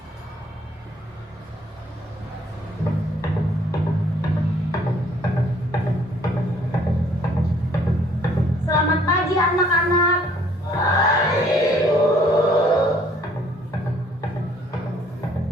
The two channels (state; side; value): normal; both; correlation 0.61